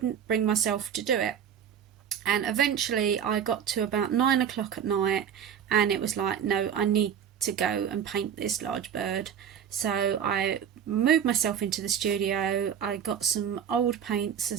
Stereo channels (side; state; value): left; quieter; 8.4 dB